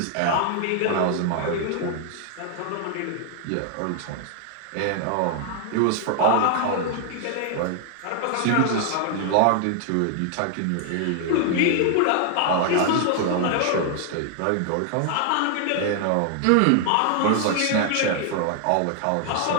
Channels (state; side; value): different; both; correlation 0.00